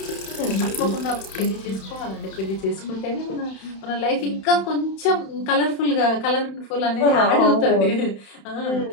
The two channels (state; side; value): late; right; 31 ms